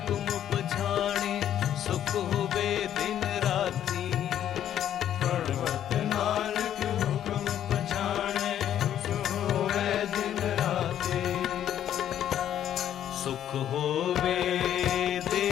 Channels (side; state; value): right; quieter; 10.7 dB